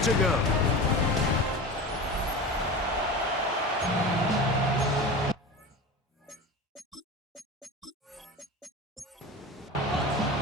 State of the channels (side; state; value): both; normal; correlation 0.30